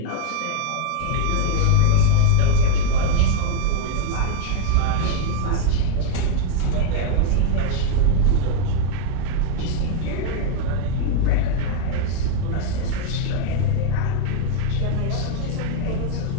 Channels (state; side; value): different; both; correlation 0.00